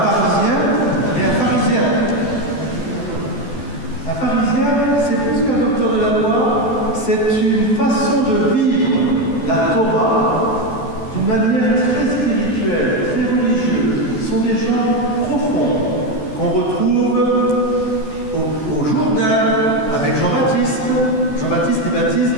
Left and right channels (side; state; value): right; late; 14 ms